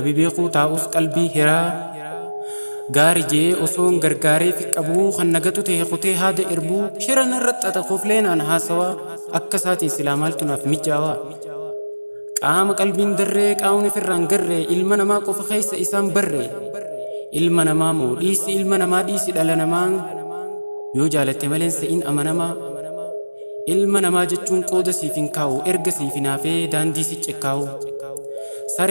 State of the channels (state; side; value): inverted; both; correlation -1.00